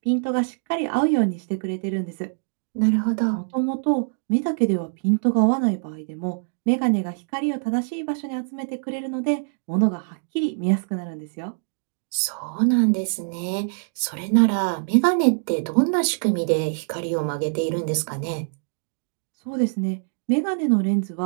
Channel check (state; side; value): silent; left; digital silence